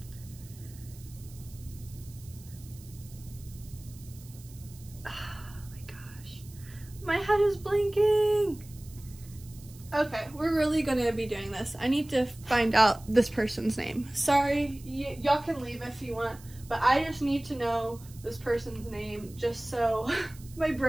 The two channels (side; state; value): right; noise; hiss, 21 dB below the sound